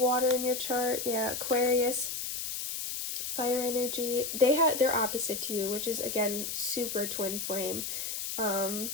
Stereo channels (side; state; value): left; noise; hiss, 4 dB below the sound